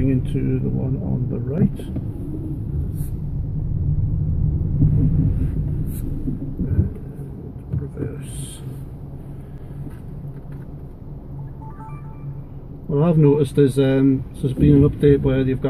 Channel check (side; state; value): both; identical; correlation 1.00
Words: into the one on the right. Reverse. Well, I've noticed there's been an update where they've